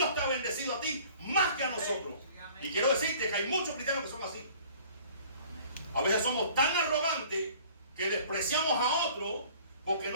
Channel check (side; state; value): both; inverted; correlation -0.51